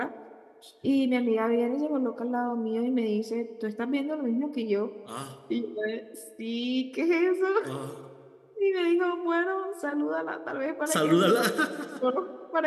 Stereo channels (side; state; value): both; identical; correlation 1.00